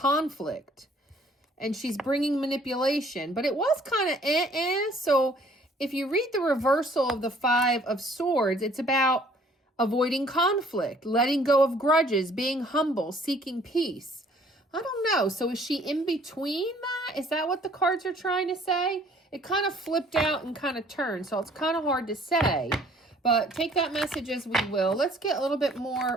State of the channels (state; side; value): normal; both; correlation 0.58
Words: and she's bringing manipulation, but it was kind of So if you read the reversal of the Five of Swords, it's about avoiding conflict, letting go of grudges, being humble, seeking peace. I don't know. So is she in between that? Is that what the cards are trying to say? It kind of flipped out and kind of turned, so it's kind of hard to say. But take that message as we will. Let's get a little bit